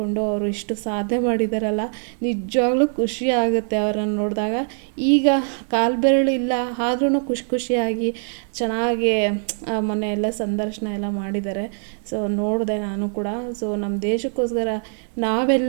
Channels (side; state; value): left; silent; digital silence